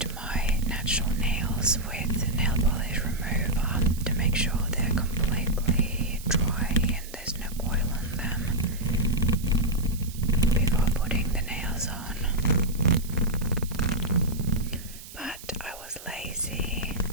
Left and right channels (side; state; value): right; noise; hiss, 16 dB below the sound